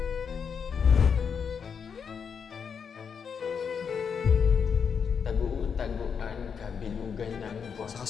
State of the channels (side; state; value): right; quieter; 6.6 dB